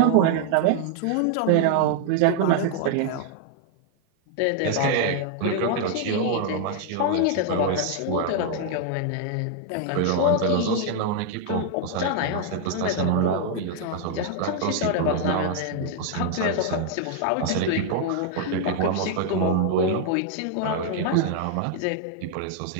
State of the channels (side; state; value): both; different; correlation 0.00